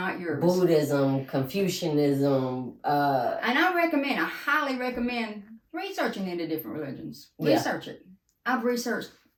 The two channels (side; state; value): both; identical; correlation 1.00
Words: yours. Buddhism, Confucianism. And I highly recommend researching into different religions. Research it. I've researched